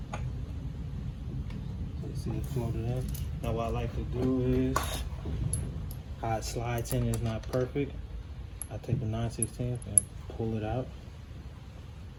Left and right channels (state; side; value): identical; both; correlation 1.00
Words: you see it floated in. Now what I like to do is how it slides in is not perfect. I take the 9/16 and pull it out.